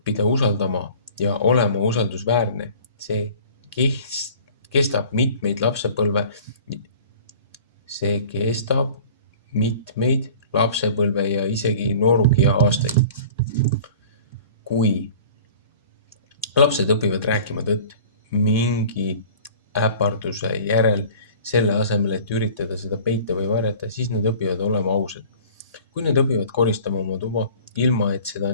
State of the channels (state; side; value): inverted; both; correlation -0.45